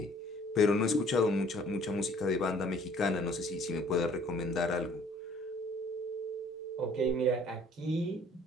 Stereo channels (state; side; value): normal; both; correlation 0.56